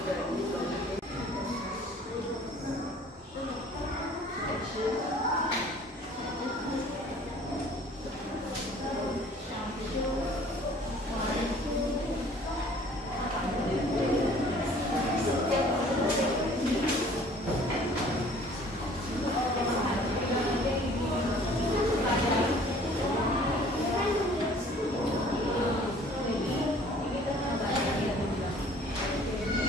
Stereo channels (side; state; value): both; normal; correlation 0.52